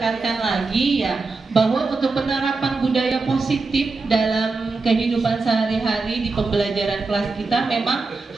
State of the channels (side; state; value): left; quieter; 3.9 dB